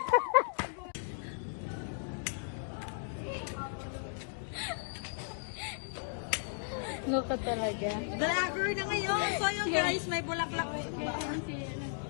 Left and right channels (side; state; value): right; silent; digital silence